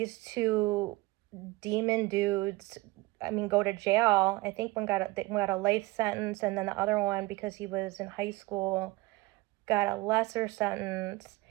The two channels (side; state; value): left; quieter; 21.2 dB